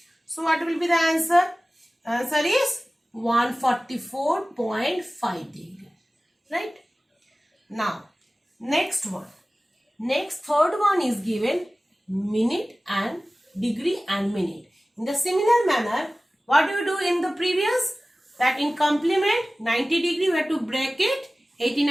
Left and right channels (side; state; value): both; normal; correlation 0.97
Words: So, what will be the answer? Answer is 144.5 degree. Right? Now, next one. Third one is given minute and degree and minute. In the similar manner, what do you do in the previous? That in complement 90 degree we have to break it,